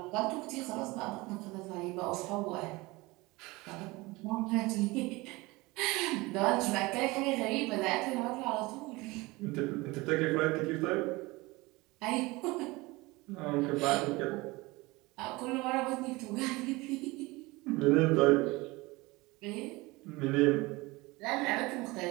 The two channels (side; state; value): left; quieter; 22.5 dB